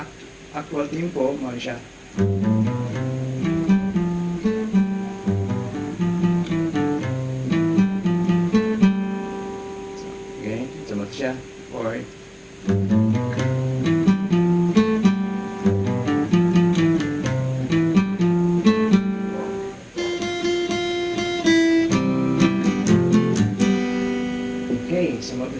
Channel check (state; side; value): identical; both; correlation 1.00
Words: actual tempo, mo siya. Okay, sumat siya. Or okay, sumat